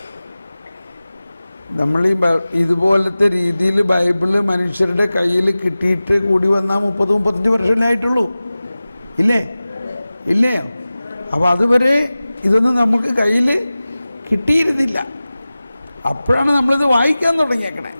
നമ്മൾ ഈ ഇതുപോലത്തെ രീതിയിൽ ബൈബിള് മനുഷ്യരുടെ കയ്യിൽ കിട്ടിയിട്ട് കൂടി വന്നാൽ 30-35 വർഷമല്ലേ ആയിട്ടുള്ളൂ, ഇല്ലേ? അപ്പോൾ അതുവരെ ഇതൊന്നും നമുക്ക് കയ്യിൽ കിട്ടിയിരുന്നില്ല. അപ്പോഴാണ് നമ്മളിത് വായിക്കാൻ തുടങ്ങിയേക്കണേ.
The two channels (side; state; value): both; inverted; correlation -0.97